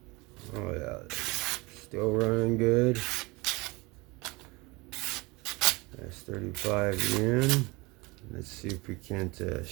Oh yeah, still running good. That's 35 yen. Let's see if we can't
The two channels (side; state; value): left; quieter; 24.5 dB